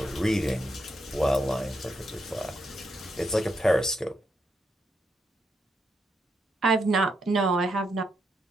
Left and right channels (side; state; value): both; normal; correlation 0.80